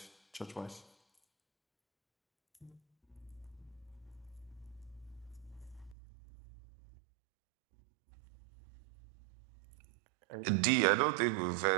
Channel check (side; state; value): left; drops out; at 6.0 s